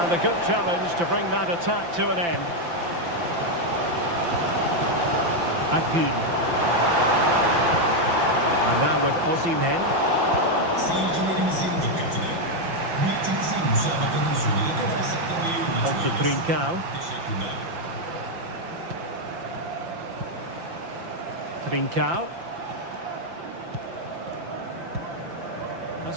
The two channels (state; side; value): late; left; 5.9 ms